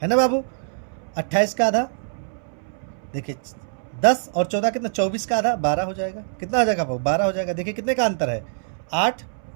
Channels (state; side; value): silent; left; 63 dB below the other